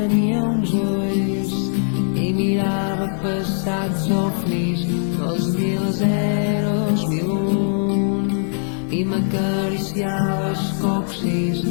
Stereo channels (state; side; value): silent; right; 63 dB below the other